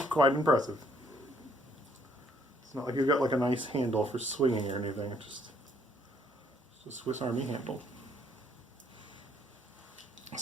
impressive. It's not like you've got like a nice handle for swinging or anything. It's just a Swiss Army handle.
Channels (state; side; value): normal; both; correlation 0.66